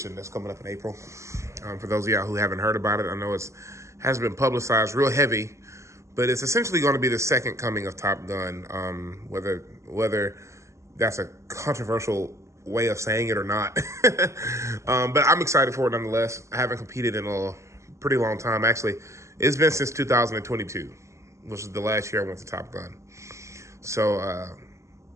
that's coming up in April. For those of y'all who haven't heard about it, I know it's hasn't been publicized real heavy, but it's essentially going to be the second coming of Top Gun. Whether that's a controversial way of saying it or not, but I'm excited for it nonetheless. I haven't competed in a pretty long time. Actually, it's been since 2022. Which is the last year I went to Top Gun. So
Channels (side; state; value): left; late; 0.14 ms